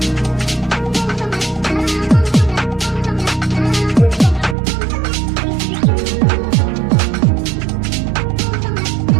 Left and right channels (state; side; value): drops out; left; at 4.5 s